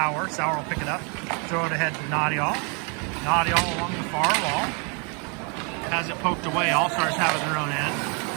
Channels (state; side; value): quieter; left; 34.7 dB